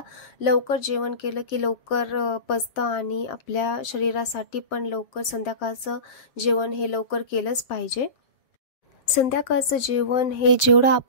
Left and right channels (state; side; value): late; right; 7.5 ms